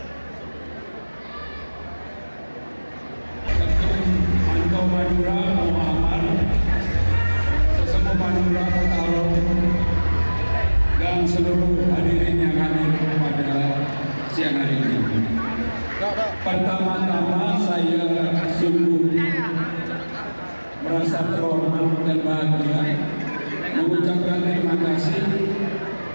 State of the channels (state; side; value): inverted; both; correlation -1.00